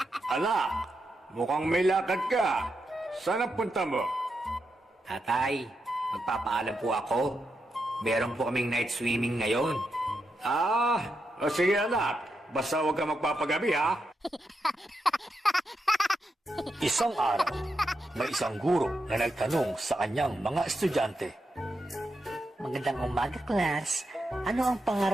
Anak, mukhang may lakad ka. Saan ang punta mo? Tatay, magpapaalam po ako. Meron po kaming night swimming ngayon. Sige anak. Basta huwag ka magpapagabi ha. Isang araw, may isang guro na nagtanong sa kanyang mga estudyante. Magandang umaga, class. Ano ang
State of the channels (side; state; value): both; normal; correlation 0.85